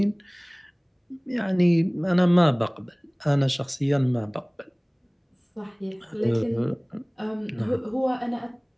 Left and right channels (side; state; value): both; identical; correlation 1.00